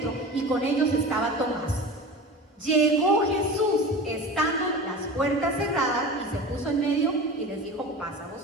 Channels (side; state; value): both; normal; correlation 0.33